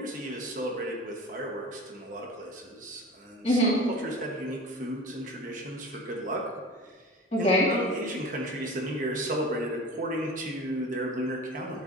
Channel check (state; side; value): normal; both; correlation 0.36